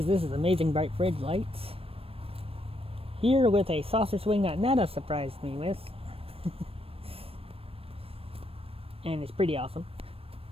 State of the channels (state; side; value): late; left; 0.28 ms